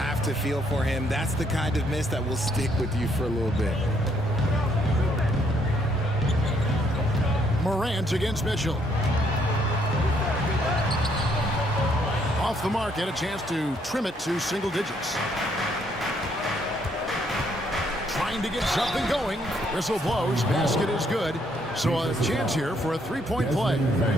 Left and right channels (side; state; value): both; normal; correlation 0.70